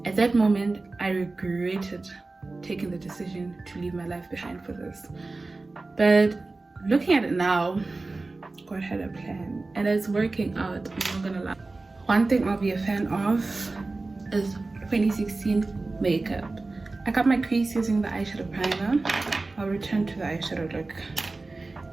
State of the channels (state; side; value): quieter; left; 3.4 dB